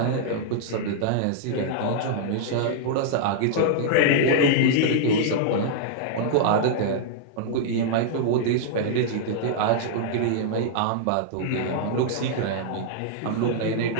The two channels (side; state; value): both; different; correlation -0.01